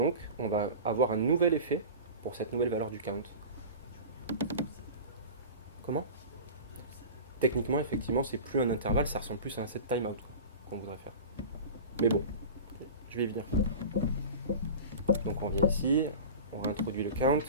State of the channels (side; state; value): both; inverted; correlation -0.34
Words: on va avoir un nouvel effet pour cette nouvelle valeur du count. Comment? Techniquement, effectivement, c'est plus un intervalle, ça ressemble plus à un set timeout qu'on voudrait faire. Mais bon, je vais y venir. Donc on vient ici, on réintroduit le count